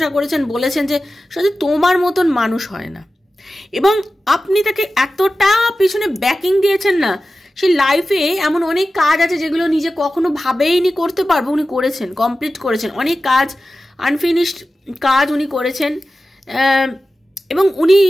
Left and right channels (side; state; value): both; normal; correlation 0.94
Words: করেছেন, বলেছেন যে সত্যি তোমার মতন মানুষ হয় না। এবং আপনি তাকে এতটা পিছনে ব্যাকিং দিয়েছেন না, সে লাইফে এমন অনেক কাজ আছে যেগুলো নিজে কখনো ভাবেইনি করতে পারবো, উনি করেছেন, কমপ্লিট করেছেন। অনেক কাজ, আনফিনিশড কাজ উনি করেছেন। এবং উনি